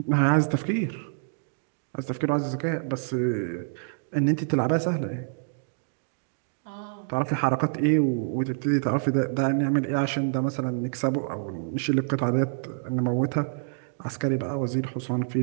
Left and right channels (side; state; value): left; silent; digital silence